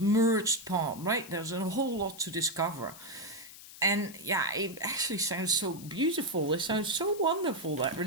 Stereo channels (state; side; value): noise; left; hiss, 17 dB below the sound